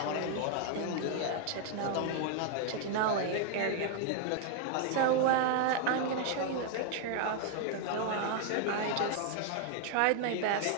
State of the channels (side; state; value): both; different; correlation 0.00